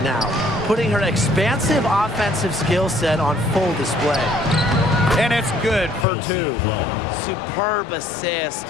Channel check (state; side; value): drops out; right; at 6.1 s